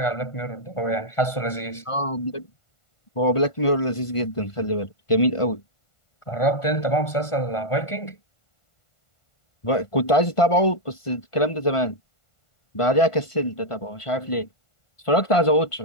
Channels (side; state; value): right; late; 1.5 ms